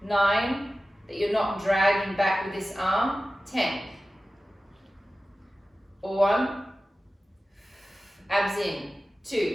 9, that you're not dragging back with this arm. 10, 1, abs in.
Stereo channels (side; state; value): both; normal; correlation 0.95